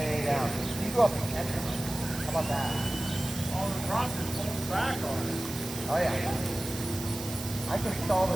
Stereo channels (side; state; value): right; noise; hiss, 10 dB below the sound